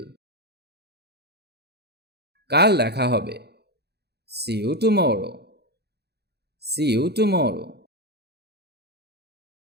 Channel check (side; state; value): left; late; 0.48 ms